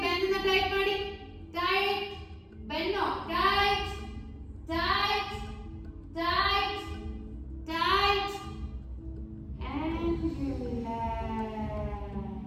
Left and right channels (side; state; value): both; identical; correlation 1.00